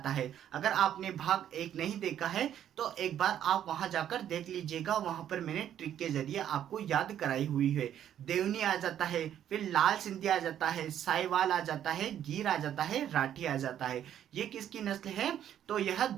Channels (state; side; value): quieter; left; 10.4 dB